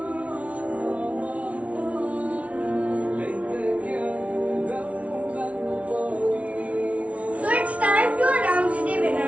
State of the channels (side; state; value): left; late; 0.065 ms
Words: So it's time to announce the